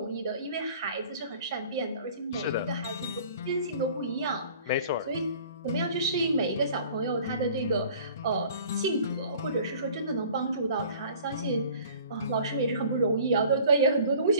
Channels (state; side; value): inverted; both; correlation -0.49